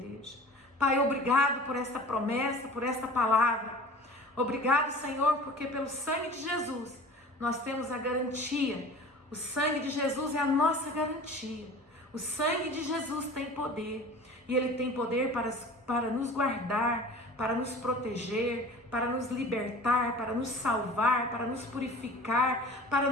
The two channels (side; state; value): both; normal; correlation 0.41